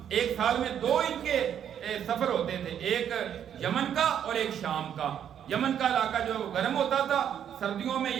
ایک سال میں 2 ان کے سفر ہوتے تھے، ایک یمن کا اور ایک شام کا۔ یمن کا علاقہ جو گرم ہوتا تھا، سردیوں میں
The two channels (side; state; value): left; quieter; 9.2 dB